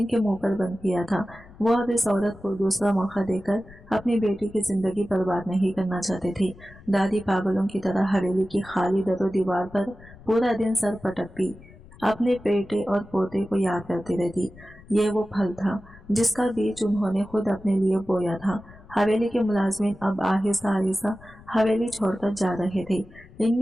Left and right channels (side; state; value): left; noise; rumble, 21 dB below the sound